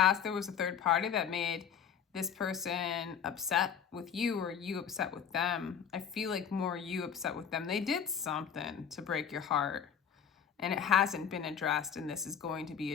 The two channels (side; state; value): right; quieter; 7.9 dB